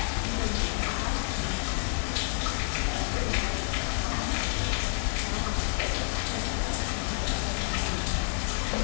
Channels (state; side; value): silent; right; 57 dB below the other